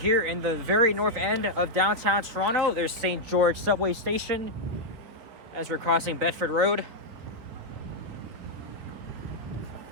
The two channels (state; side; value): late; left; 4.3 ms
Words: in the very north end of downtown Toronto. There's St. George subway station as we're crossing Bedford Road.